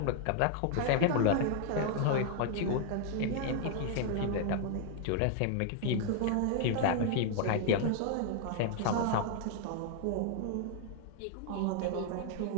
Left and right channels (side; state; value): both; different; correlation 0.00